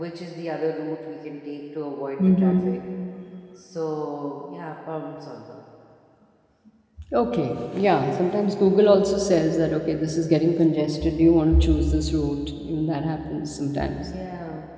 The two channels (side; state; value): both; identical; correlation 1.00